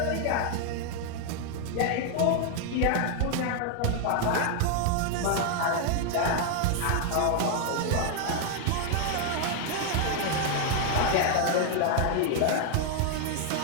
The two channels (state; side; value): different; both; correlation 0.00